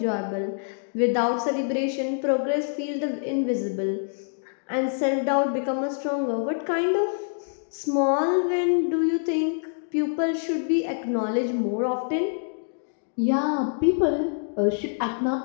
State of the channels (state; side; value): silent; right; digital silence